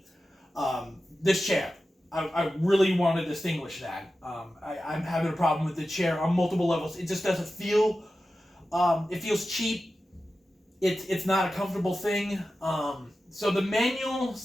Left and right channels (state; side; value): normal; both; correlation 0.93